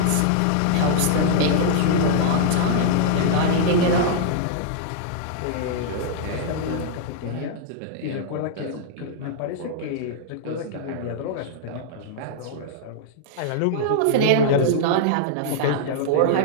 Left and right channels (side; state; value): both; different; correlation -0.01